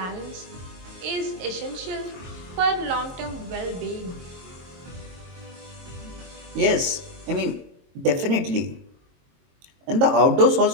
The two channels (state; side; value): late; left; 22 ms